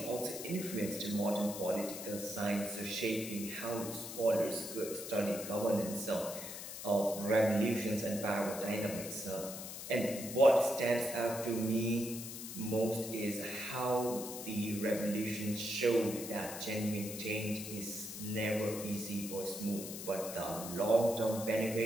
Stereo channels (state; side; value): noise; left; hiss, 9 dB below the sound